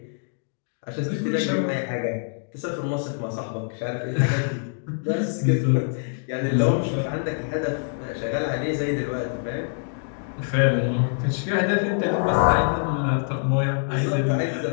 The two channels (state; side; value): silent; right; digital silence